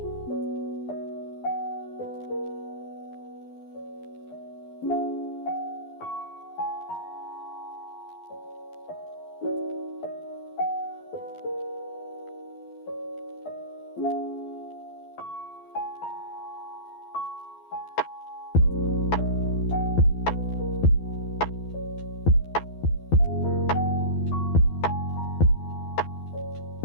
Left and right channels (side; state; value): right; late; 12 ms